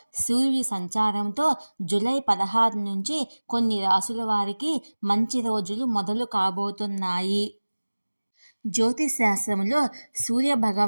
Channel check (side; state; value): both; inverted; correlation -1.00